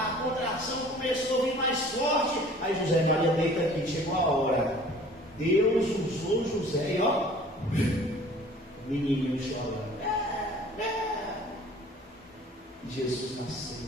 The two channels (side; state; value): both; normal; correlation 0.49